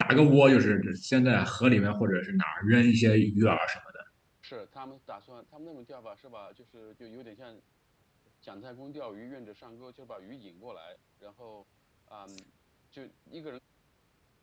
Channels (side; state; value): both; identical; correlation 1.00